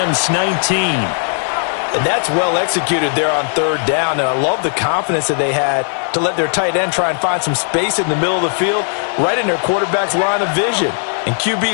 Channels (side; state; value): right; silent; digital silence